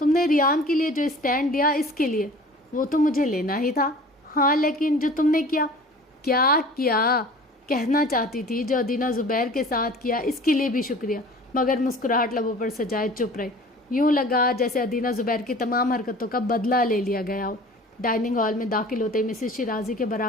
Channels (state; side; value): normal; both; correlation 0.44